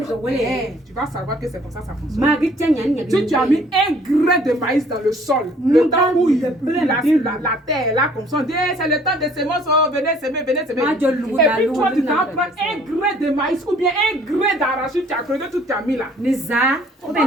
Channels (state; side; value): normal; both; correlation 0.57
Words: ko wele tu vas savoir que c'est comme ça fonctionne. magi tanya nya Si tu as mis un grain de maïs dans le sol, le temps où la terre est là comme ça, on dit eh, c'est le temps de semences, oh, venez semer, venez semer. Ah, je loue, Et la puis loue, toi, tu la t'en loue, prends la un loue. grain de maïs ou bien un grain d'arachide, tu as creusé tout, tu as mis là. ni za On va